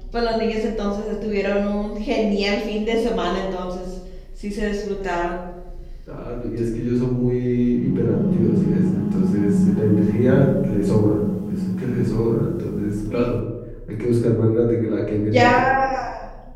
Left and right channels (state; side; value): identical; both; correlation 1.00